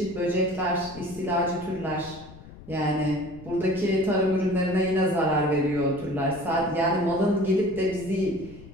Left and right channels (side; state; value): left; noise; rumble, 18 dB below the sound